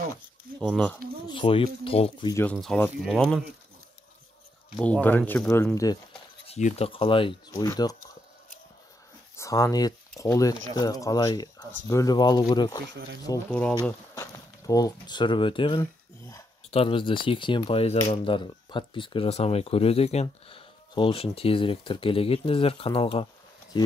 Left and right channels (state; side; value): normal; both; correlation 0.79